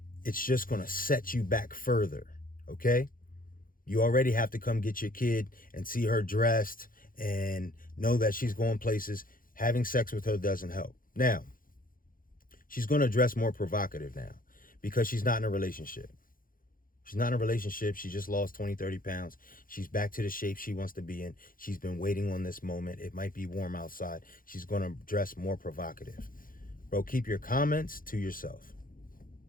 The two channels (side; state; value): right; late; 0.41 ms